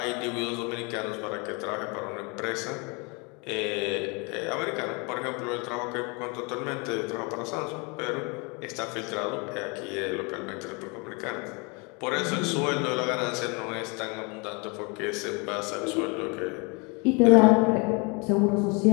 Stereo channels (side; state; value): right; quieter; 30.9 dB